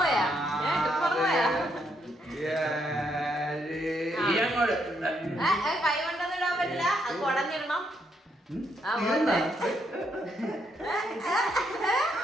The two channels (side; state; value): both; normal; correlation 0.75